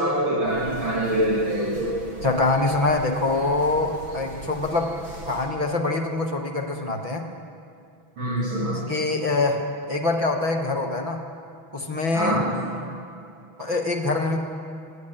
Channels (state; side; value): late; left; 6.1 ms